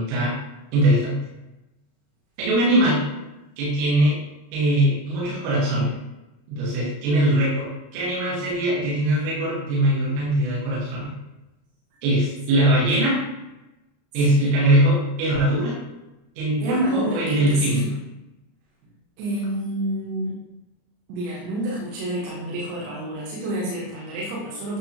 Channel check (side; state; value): left; late; 34 ms